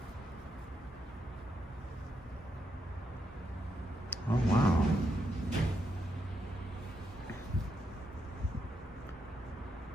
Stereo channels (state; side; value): normal; both; correlation 0.81